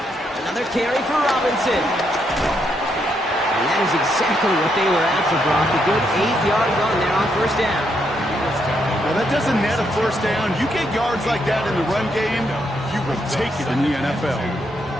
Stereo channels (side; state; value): both; normal; correlation 0.77